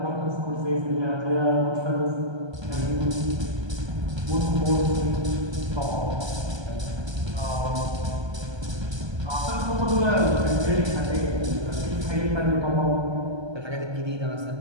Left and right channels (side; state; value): left; late; 1.3 ms